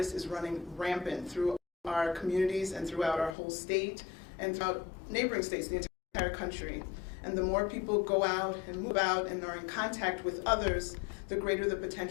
is running rampant through our communities and throughout our whole state and throughout neighboring states, the entire country. And the more people go out and move out and are in contact with others, the greater the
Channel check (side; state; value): right; drops out; at 3.4 s